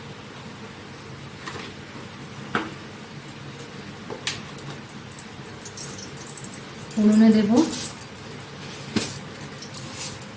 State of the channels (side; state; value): both; identical; correlation 1.00